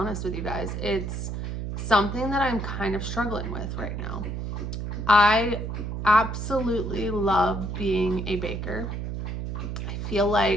with you guys. It's something that I'm kind of struggling with right now. I absolutely love being a baker. I feel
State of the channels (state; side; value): noise; right; hum, 4 dB below the sound